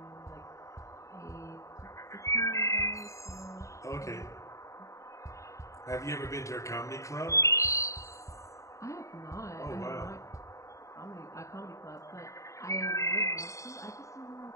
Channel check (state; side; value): late; right; 0.15 ms